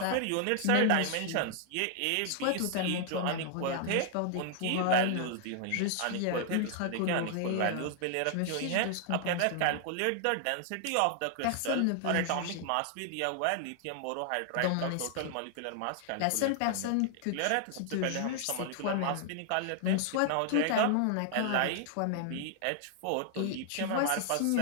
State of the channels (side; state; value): both; different; correlation 0.00